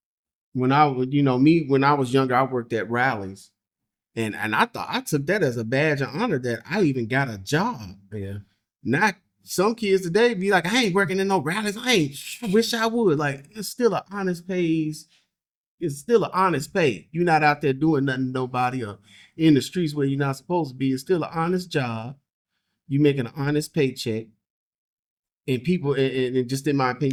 when I was, me when I was younger, I worked at rallies, and I thought I took that as a badge of honor that I even got a job. Yeah. Not some kids today be like, I ain't working in no rallies. I wish I would. Like it's still an honest pays. It's still an honest pay. You're not out there doing nothing to nobody or in the streets where you're not supposed to be. It's still an honest job. You making an honest paycheck. And people, and just in my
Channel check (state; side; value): identical; both; correlation 1.00